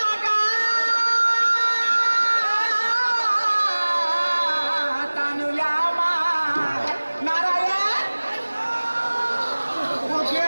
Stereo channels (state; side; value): inverted; both; correlation -1.00